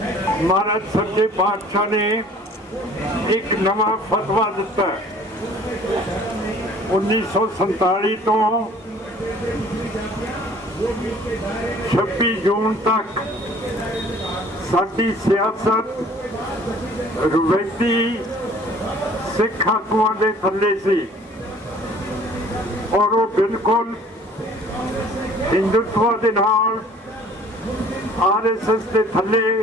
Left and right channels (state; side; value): normal; both; correlation 0.52